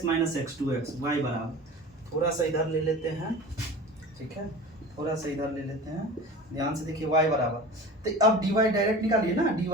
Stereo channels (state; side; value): normal; both; correlation 0.36